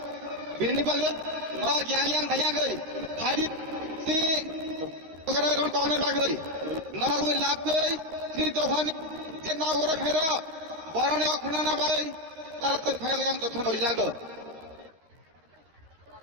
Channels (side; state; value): left; late; 13 ms